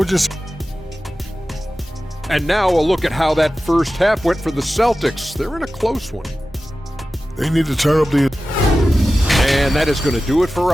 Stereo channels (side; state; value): both; normal; correlation 0.95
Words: And now a look at how that first half went for the Celtics. They're in a close one. They need to turn up the... And that is going to do it for